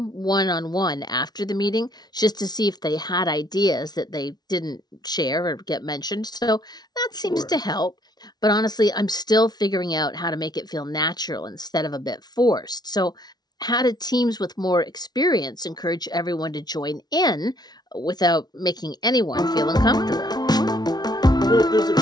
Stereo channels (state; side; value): late; right; 0.19 ms